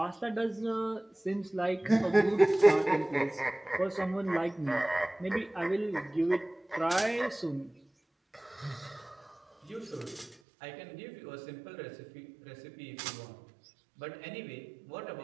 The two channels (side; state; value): left; drops out; at 10.4 s